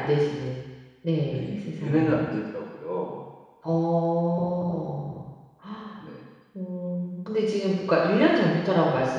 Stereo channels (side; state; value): both; identical; correlation 1.00